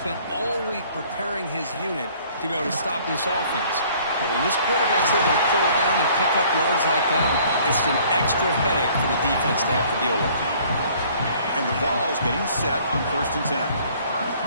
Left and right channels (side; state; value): both; inverted; correlation -0.56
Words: all week preparing his unit to be able to stop this offense. But when this quarterback's able to pull down and pick up yards like that, it's an extra headache for the defense to have to deal with. And the Vols getting set on 1st and 10.